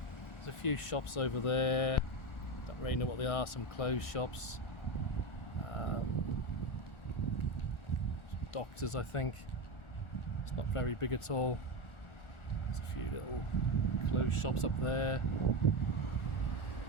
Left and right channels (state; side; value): late; right; 1.4 ms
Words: There's a few shops over there. Don't really know what they are. Some clothes shops, doctors, I think. It's not very big at all. There's a few little clothes shops up there.